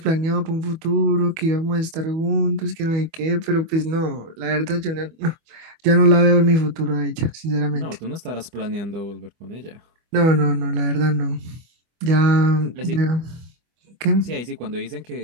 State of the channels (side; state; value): left; late; 25 ms